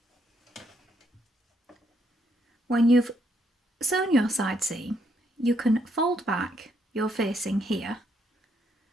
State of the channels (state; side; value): normal; both; correlation 0.74